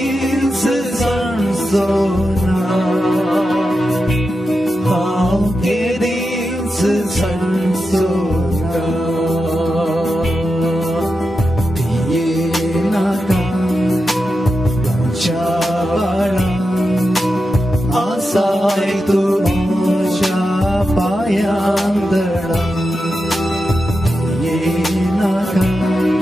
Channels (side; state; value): both; normal; correlation 0.89